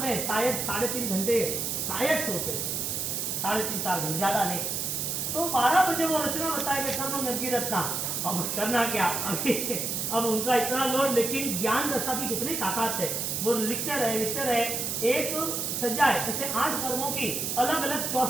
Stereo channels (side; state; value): right; noise; hiss, 1 dB below the sound